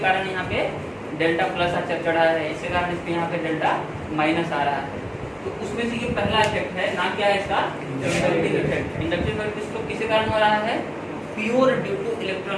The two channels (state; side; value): identical; both; correlation 1.00